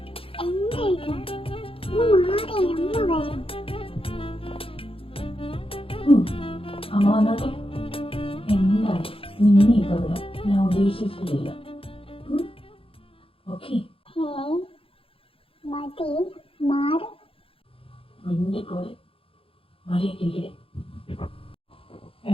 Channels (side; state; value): right; late; 0.27 ms